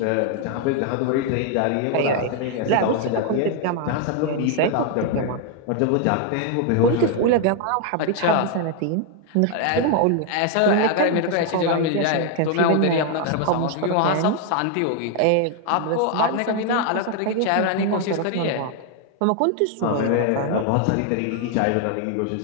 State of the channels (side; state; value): both; different; correlation 0.00